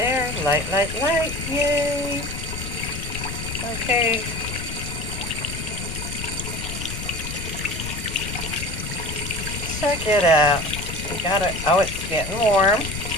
light, light, light, yay! Okay. Check it out. We got it. Oh, it's getting warm.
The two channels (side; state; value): left; noise; rumble, 7 dB below the sound